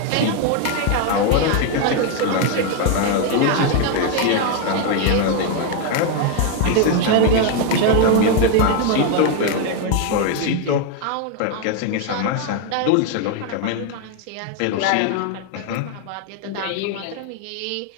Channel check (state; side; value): different; both; correlation 0.01